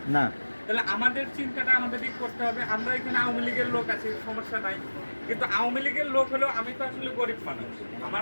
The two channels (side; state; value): both; inverted; correlation -1.00